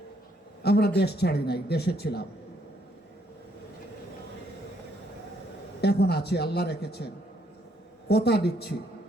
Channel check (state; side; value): normal; both; correlation 0.70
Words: আমরা দেশ ছাড়ি নাই, দেশে ছিলাম, এখন আছি, আল্লাহ রেখেছেন। কথা দিচ্ছি,